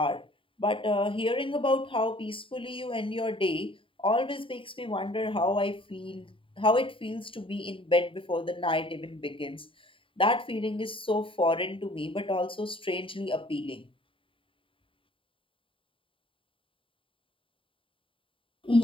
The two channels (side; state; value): right; late; 0.25 ms